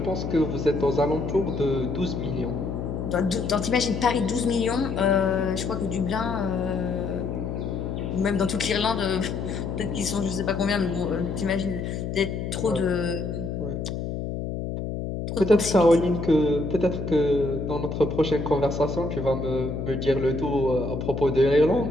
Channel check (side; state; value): left; noise; hum, 4 dB below the sound